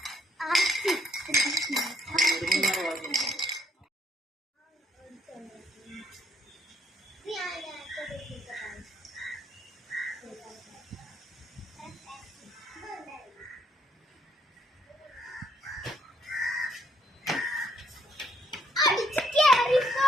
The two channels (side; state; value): both; normal; correlation 0.69